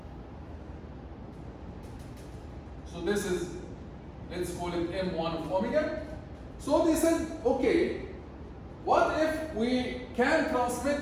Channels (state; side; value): identical; both; correlation 1.00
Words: So this is, let's call it M1 of omega. So they said, okay, what if we can transmit